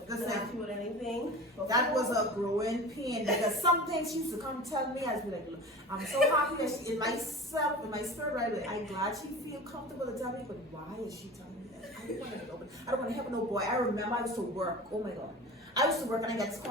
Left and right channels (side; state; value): both; normal; correlation 0.35